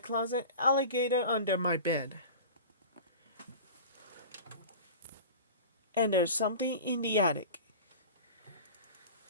Alligator Under My Bed. And There's Something in the Attic.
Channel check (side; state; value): both; inverted; correlation -0.35